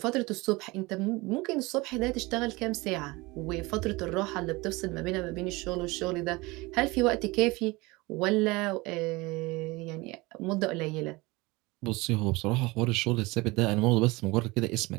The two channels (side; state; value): left; quieter; 23.0 dB